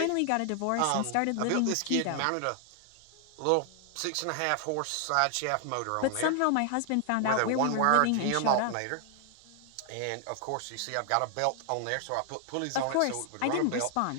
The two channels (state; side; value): different; both; correlation 0.00